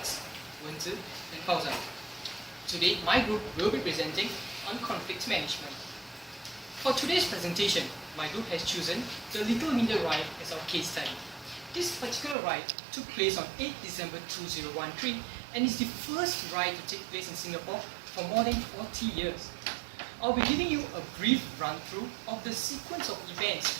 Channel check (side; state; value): left; drops out; at 12.4 s